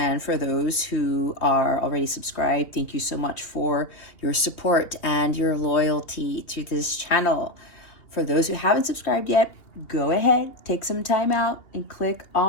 for those who are already subscribed, thank you so much for your support and your loyalty to this channel. For those who haven't subscribed yet, go ahead, take some time out and click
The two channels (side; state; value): right; late; 2.8 ms